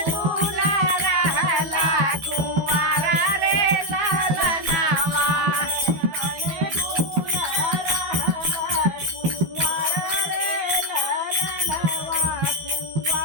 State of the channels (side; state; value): left; late; 12 ms